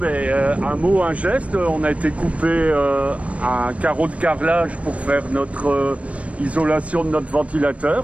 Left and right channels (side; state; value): left; late; 0.064 ms